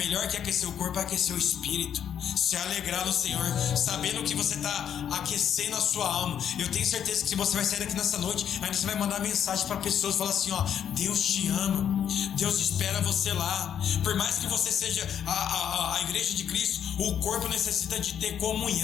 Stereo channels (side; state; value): right; quieter; 9.0 dB